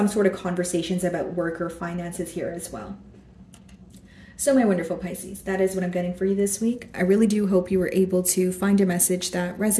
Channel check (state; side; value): identical; both; correlation 1.00